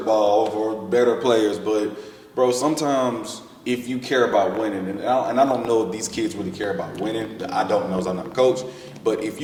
ball for better players, but bro, sometimes if you care about winning, and I don't know if these kids really care about winning. I don't know, 'cause I'm not a coach. But if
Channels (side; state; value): both; identical; correlation 1.00